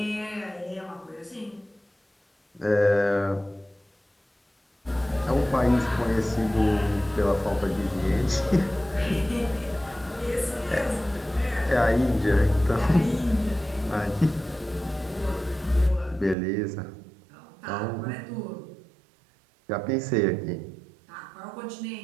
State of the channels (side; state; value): left; drops out; at 16.4 s